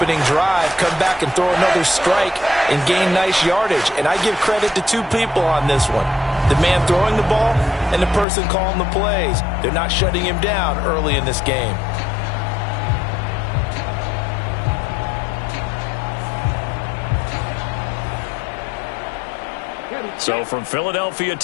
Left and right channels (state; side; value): drops out; right; at 8.2 s